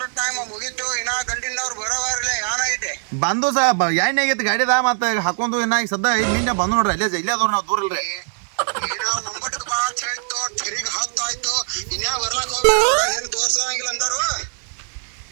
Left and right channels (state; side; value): silent; left; 57 dB below the other